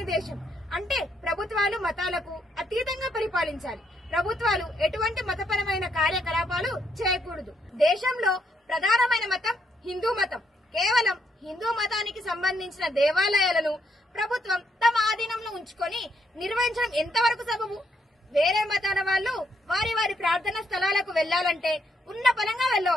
దేశం. అంటే ప్రభుత్వాలు మతాలకు అతీతంగా పరిపాలించాలి. ప్రభుత్వాలు ఎటువంటి మతపరమైన కార్యకలాపాలు చేయకూడదు. దేశంలో ప్రధానమైన మతం హిందూ మతం. కేవలం హిందూ మతానికి సంబంధించిన దేవాలయాలను ప్రభుత్వం తమ ఆధీనంలో ఉంచుకొని నిర్వహించడం ఎంతవరకు సబబు? వేరే మతాల వాళ్ళు వారి వారి ప్రార్థనా స్థలాలకు వెళ్లాలంటే ఉన్న పరంగా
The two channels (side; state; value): both; normal; correlation 0.75